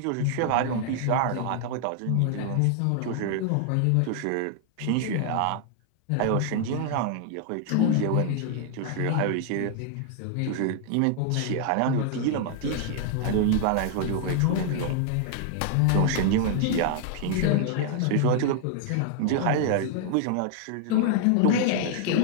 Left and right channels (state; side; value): different; both; correlation 0.00